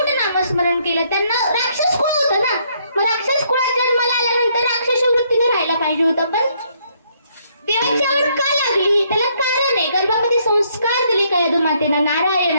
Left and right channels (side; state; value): both; inverted; correlation -0.70